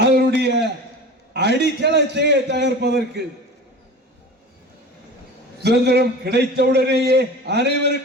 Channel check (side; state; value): both; normal; correlation 0.35